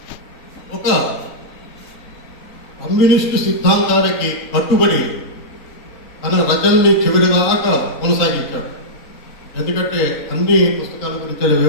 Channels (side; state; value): right; late; 3.7 ms